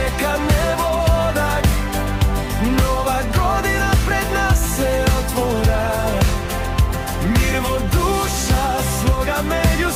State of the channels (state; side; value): identical; both; correlation 1.00